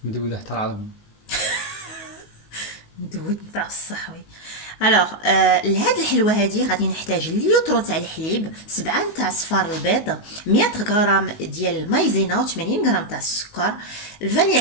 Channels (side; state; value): right; late; 19 ms